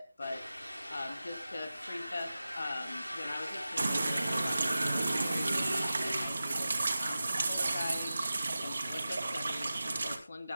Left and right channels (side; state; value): both; inverted; correlation -0.95